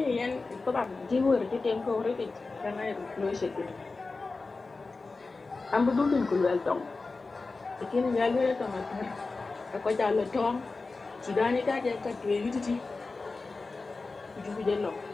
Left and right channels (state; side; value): quieter; right; 3.8 dB